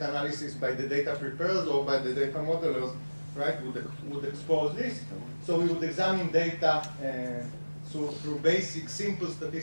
analysis by the data preparers or by the data modelers, right, would expose this. So we would examine data through basic, simple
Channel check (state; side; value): inverted; both; correlation -1.00